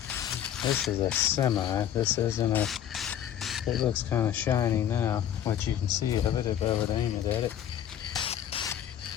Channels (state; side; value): quieter; right; 10.4 dB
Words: This is a semi. This isn't a... It looks kind of shiny now, what you can see of it if I would aim it at it.